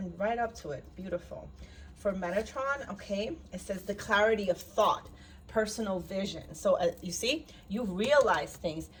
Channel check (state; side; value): identical; both; correlation 1.00